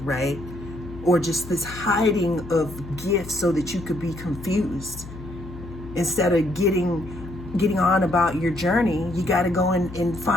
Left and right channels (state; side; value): noise; left; hum, 13 dB below the sound